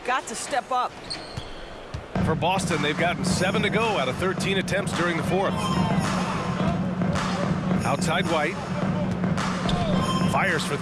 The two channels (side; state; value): both; identical; correlation 1.00